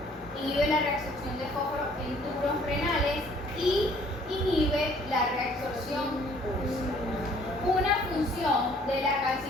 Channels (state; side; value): normal; both; correlation 0.58